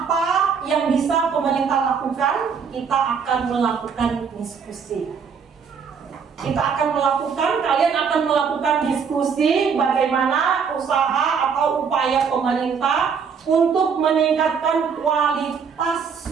yang bisa pemerintah lakukan, kita akan melakukan diskusi. Kalian akan melakukan diskusi bagaimana usaha atau upaya pemerintah untuk meningkatkan kualitas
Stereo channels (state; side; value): quieter; left; 6.3 dB